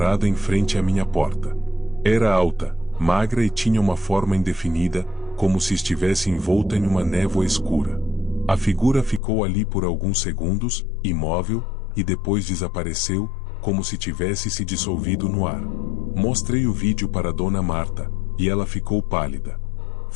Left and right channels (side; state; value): right; drops out; at 9.2 s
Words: em frente à minha porta. Era alta, magra e tinha uma forma indefinida, como se estivesse envolta em uma névoa escura. A figura ficou ali por alguns segundos, imóvel, e depois desapareceu, como se tivesse se dissolvido no ar. Mostrei o vídeo para Dona Marta, e ela ficou pálida.